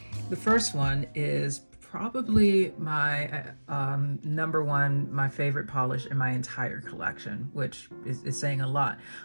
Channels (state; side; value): inverted; both; correlation -1.00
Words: The first one is probably my number one, my favorite polish in my entire collection, which is saying a lot.